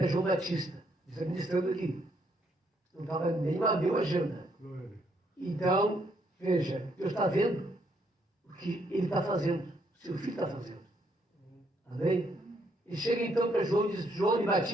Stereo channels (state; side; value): normal; both; correlation 0.72